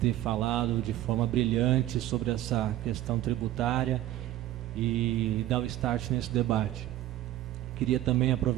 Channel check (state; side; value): quieter; left; 14.0 dB